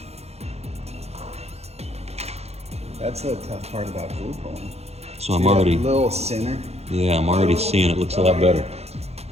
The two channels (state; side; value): late; left; 0.31 ms